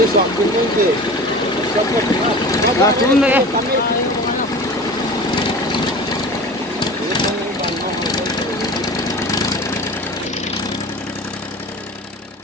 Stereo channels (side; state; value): both; normal; correlation 0.36